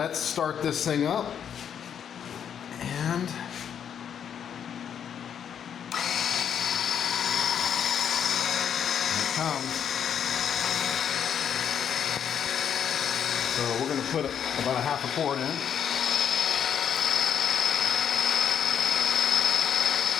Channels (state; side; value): quieter; right; 8.4 dB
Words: start this thing up, and here it comes. So we're going to put about a half a quart in.